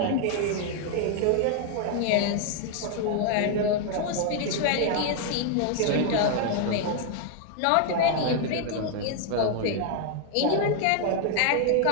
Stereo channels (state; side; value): different; both; correlation 0.00